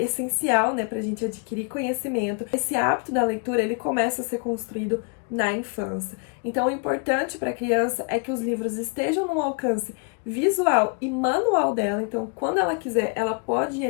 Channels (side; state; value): right; quieter; 36.1 dB